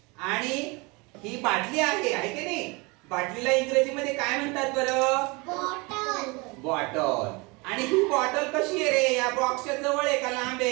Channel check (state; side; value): quieter; left; 27.0 dB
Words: आणि ही बाटली आहे की नाही? बाटलीला इंग्रजीमध्ये काय म्हणतात बरं? बॉटल. बॉटल. आणि ही बॉटल कशी आहे रे? या बॉक्सच्या जवळ आहे का लांब